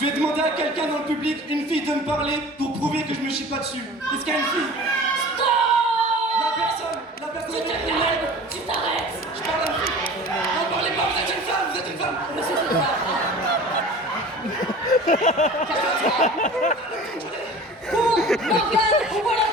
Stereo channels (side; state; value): both; normal; correlation 0.41